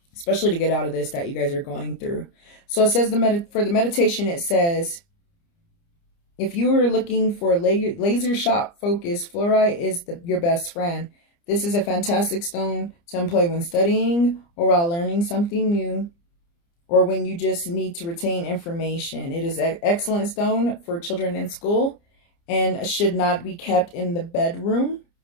especially to get out of this that you guys are going through. So it says for the meditation, it says, if you were looking for laser shot focus, fluorite is your best friend. This is a fantastic stone to employ when studying or while learning something new, or when you just need to retain information. It is an excellent stone for children in school and should not be kept in the bedroom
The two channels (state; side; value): late; right; 29 ms